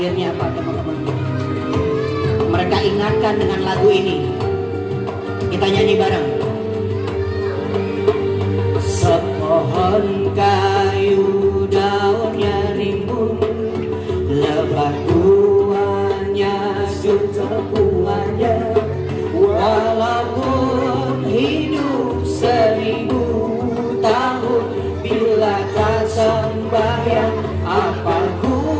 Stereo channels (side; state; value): both; identical; correlation 1.00